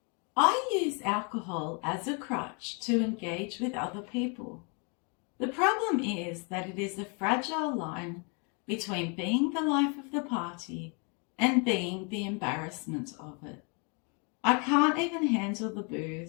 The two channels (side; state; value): right; quieter; 35.1 dB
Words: I use alcohol as a crutch to engage with other people. The problem is that it is a fragile line between being the life of the party and being the embarrassment of it. I can't even handle the